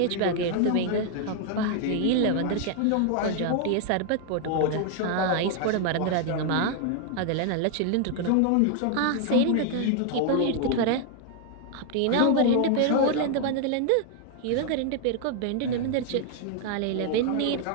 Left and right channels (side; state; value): both; different; correlation 0.00